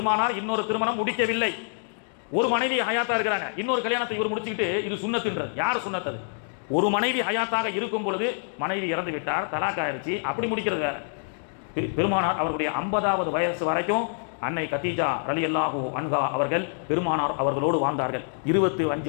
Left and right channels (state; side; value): silent; right; digital silence